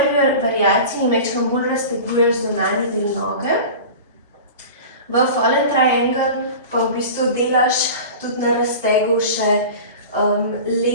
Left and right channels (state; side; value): inverted; both; correlation -0.35